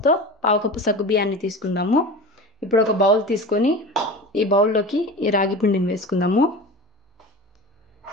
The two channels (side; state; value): both; normal; correlation 0.32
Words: పావు కప్పు సగ్గుబియ్యాన్ని తీసుకుందాము. ఇప్పుడు ఒక బౌల్ తీసుకొని ఈ బౌల్లోకి ఈ రాగి పిండిని వేసుకుందాము.